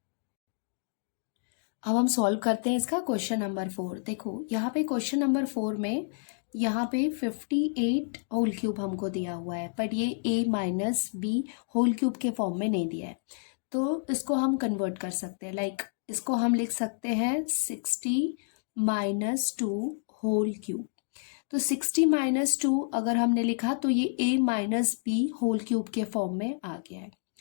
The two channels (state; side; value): silent; right; digital silence